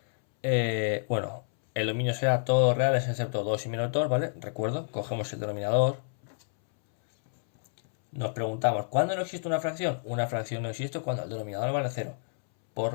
bueno, el dominio será todos reales excepto 2 y menos 2, ¿vale? Recuerdo, cogemos el denominador. Nos preguntamos, ¿cuándo no existe una fracción? Una fracción no existe cuando el denominador vale 0. Por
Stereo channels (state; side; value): silent; right; 59 dB below the other